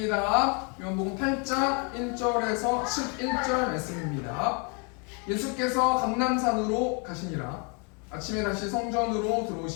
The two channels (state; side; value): quieter; right; 35.5 dB